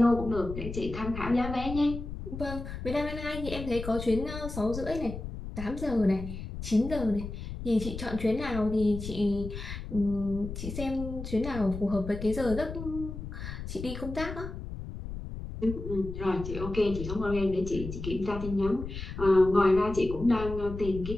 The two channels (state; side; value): noise; left; rumble, 8 dB below the sound